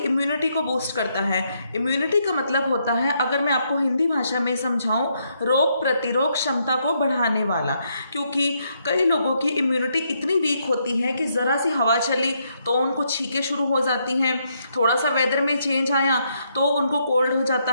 को बूस्ट करता है। इम्यूनिटी का मतलब होता है, अगर मैं आपको हिंदी भाषा में समझाऊं, रोग प्रतिरोध क्षमता को बढ़ाने वाला। क्योंकि कई लोगों की इम्यूनिटी इतनी वीक होती है कि ज़रा सी हवा चली तो उनको छींकें शुरू हो जाती हैं, थोड़ा सा वेदर में चेंज आया तो उनको कोल्ड हो जाता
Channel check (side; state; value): both; inverted; correlation -0.76